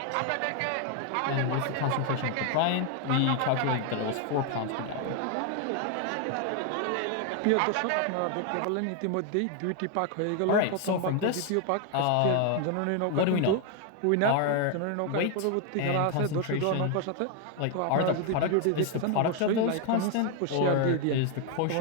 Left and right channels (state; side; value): different; both; correlation 0.01